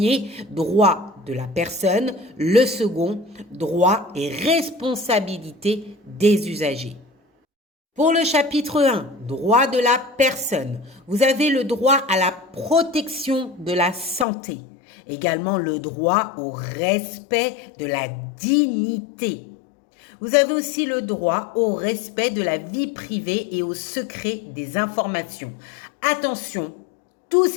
droit de la personne. Le second, droit et responsabilité des usagers. Pour le chapitre 1, droit de la personne, vous avez le droit à la protection de la santé, également le droit au respect de la dignité. Vous avez aussi le droit au respect de la vie privée et au secret des informations. Attention, tous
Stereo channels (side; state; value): right; drops out; at 14.2 s